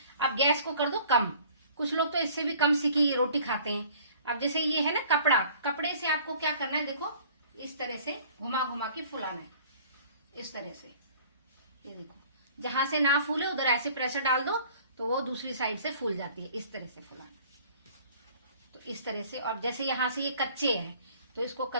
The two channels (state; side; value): inverted; both; correlation -0.51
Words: अब गैस को कर दो कम, कुछ लोग तो इससे भी कम सिकी रोटी खाते हैं। अब जैसे ये है ना कपड़ा, कपड़े से आपको क्या करना है, देखो इस तरह से घुमा घुमा के फुलाना है, इस तरह से। ये देखो, जहां से ना फूले उधर ऐसे प्रेशर डाल दो तो वो दूसरी साइड से फूल जाती है, इस तरह से फुलाना। तो इस तरह से। और जैसे यहाँ से ये कच्चे है तो इसको